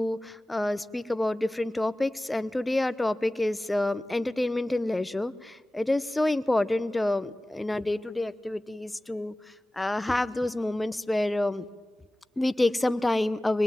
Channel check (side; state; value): both; normal; correlation 0.97